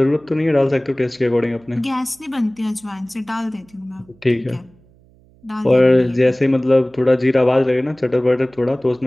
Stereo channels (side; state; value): right; noise; hum, 30 dB below the sound